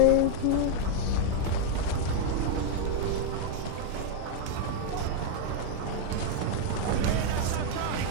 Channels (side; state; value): both; different; correlation 0.00